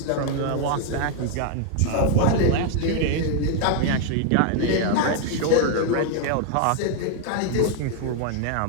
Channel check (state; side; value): different; both; correlation 0.00